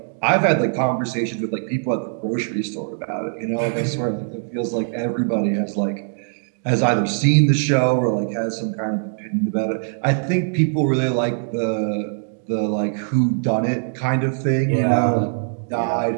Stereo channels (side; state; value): left; silent; digital silence